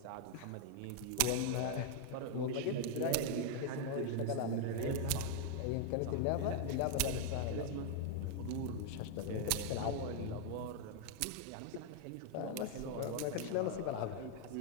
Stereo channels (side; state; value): both; different; correlation 0.00